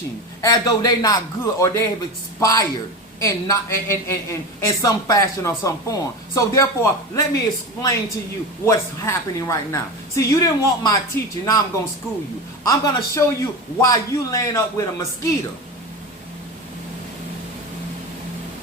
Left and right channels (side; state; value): both; normal; correlation 0.24